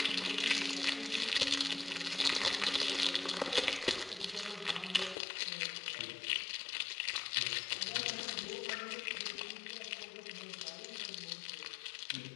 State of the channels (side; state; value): right; drops out; at 5.2 s